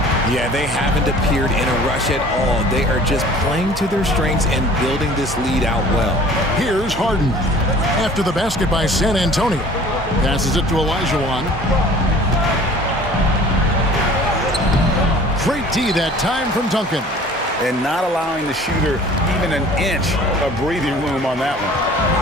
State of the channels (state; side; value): normal; both; correlation 0.48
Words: Yeah, they haven't appeared in a rush at all. They are just playing to their strengths and building this lead out well. Here's Harden. After the basket by San Antonio. Passes it to Olajuwon. Great D that time from Duncan. And not allowing the shooter even an inch of breathing room on that one.